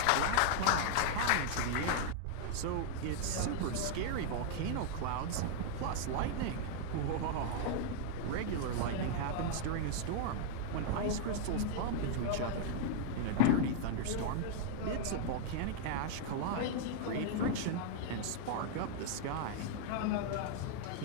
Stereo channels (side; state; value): both; different; correlation -0.01